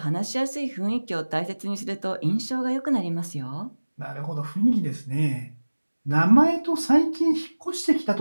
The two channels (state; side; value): inverted; both; correlation -1.00